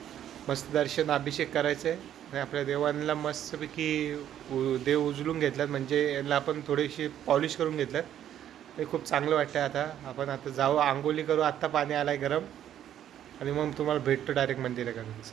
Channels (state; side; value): quieter; left; 10.8 dB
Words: मस्त दर्शन अभिषेक करायचं आहे आणि आपल्या देवांना मस्तपैकी देव उचलून घेतलात, म्हणजे यांना आपण थोडीशी पॉलिश करून घेतलं. ते खूप चांगलं वाटतं. आता आपण जाऊ, आंघोळी करू. आत्ता पाणी आलं आहे गरम आणि मग तुम्हाला भेटतो डायरेक्ट मंदिराकडे.